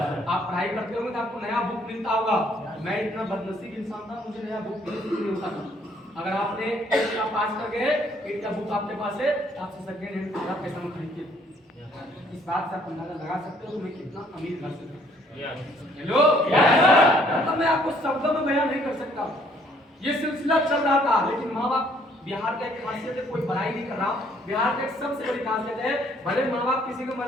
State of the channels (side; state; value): both; normal; correlation 0.63